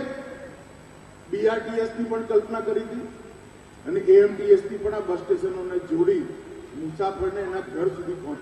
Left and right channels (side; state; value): both; identical; correlation 1.00